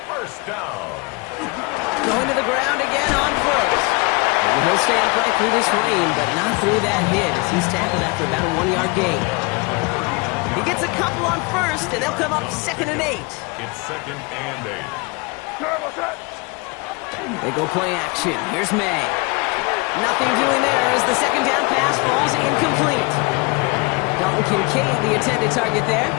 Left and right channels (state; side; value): quieter; right; 28.2 dB